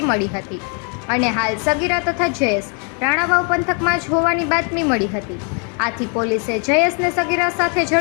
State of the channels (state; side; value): quieter; right; 38.4 dB